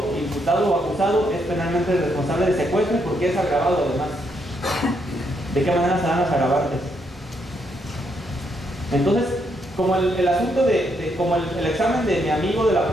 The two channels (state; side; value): normal; both; correlation 0.76